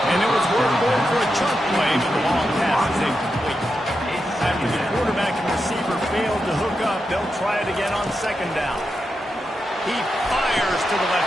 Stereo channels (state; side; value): normal; both; correlation 0.87